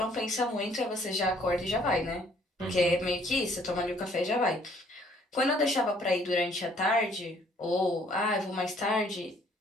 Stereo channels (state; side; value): normal; both; correlation 0.62